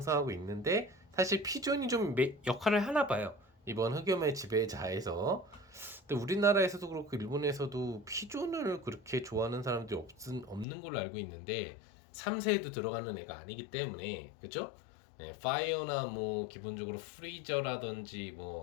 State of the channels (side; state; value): right; drops out; at 10.7 s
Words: 있는데 사실 피존이 좀 역할을 하나 봐요. 이번 흑염의 지배자에서. 근데 우리나라에서도 그렇고 일본에서도 피존을 그렇게 좋아하는 사람들이 없는 걸로 알고 있는데 3세에도 들어가는 애가 아니기 때문에 그죠? 네, 파이어나 뭐 기본적으로 프리저라든지